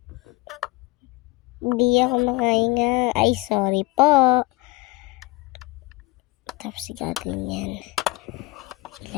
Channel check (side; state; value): right; quieter; 21.5 dB